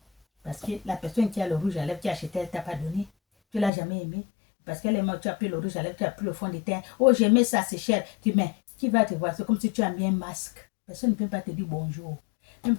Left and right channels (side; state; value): right; drops out; at 3.7 s